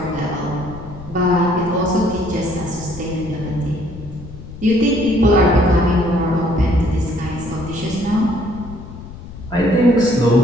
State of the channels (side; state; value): left; noise; rumble, 14 dB below the sound